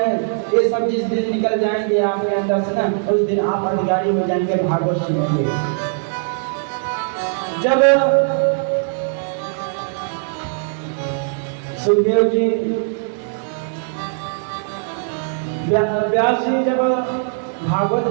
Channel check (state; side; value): silent; left; digital silence